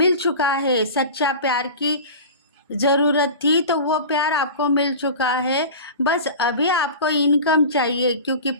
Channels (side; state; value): both; inverted; correlation -0.34